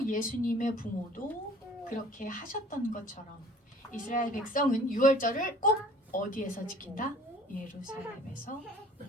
예수님의 부모도 그렇게 하셨던 것처럼 이스라엘 백성은 유월절을 꼭 어디에서 지킨다? 예루살렘에서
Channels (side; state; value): both; normal; correlation 0.50